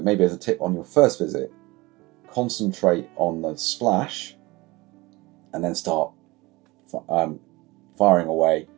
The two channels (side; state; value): left; quieter; 22.2 dB